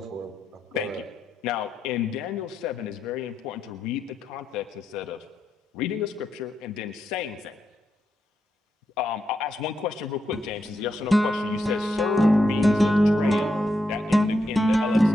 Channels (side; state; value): both; normal; correlation 0.83